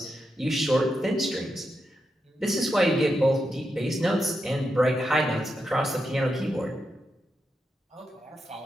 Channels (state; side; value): normal; both; correlation 0.86